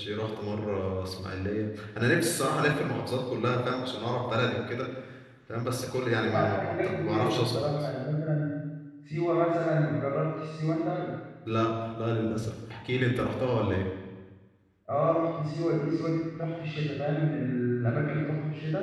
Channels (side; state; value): both; identical; correlation 1.00